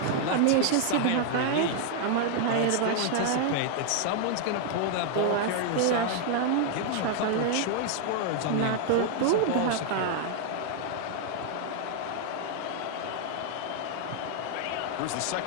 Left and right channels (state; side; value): different; both; correlation 0.00